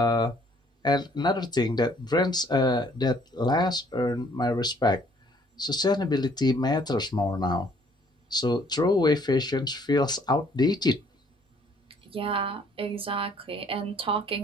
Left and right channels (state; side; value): normal; both; correlation 0.62